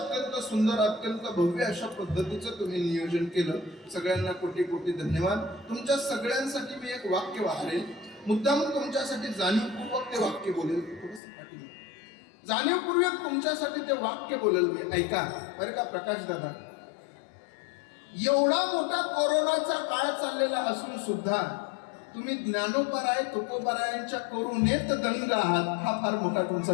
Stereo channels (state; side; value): drops out; right; at 11.2 s